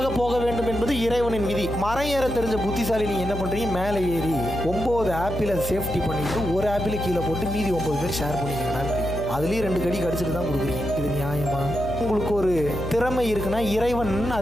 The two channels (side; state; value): left; noise; hum, 7 dB below the sound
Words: போக வேண்டும் என்பது இறைவனின் விதி. மரம் ஏற தெரிஞ்ச புத்திசாலி நீங்க என்ன பண்றீங்க, மேலே ஏறி 9 ஆப்பிளை சேஃப்டி பண்ணிட்டு ஒரு ஆப்பிளை கீழே போட்டு மீதி 9 பேர் ஷேர் பண்ணிக்கிறீங்க. அதுலேயும் 2 கடி கடிச்சிட்டு தான் கொடுக்குறீங்க. இது நியாயமா? உங்களுக்கு ஒரு திறமை இருக்குன்னா இறைவன்